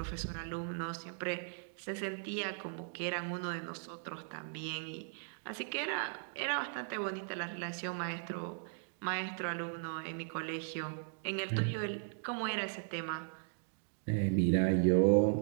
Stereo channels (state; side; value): silent; left; digital silence